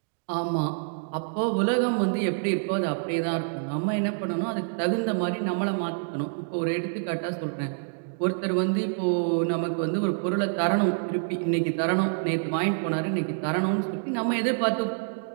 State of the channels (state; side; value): silent; left; digital silence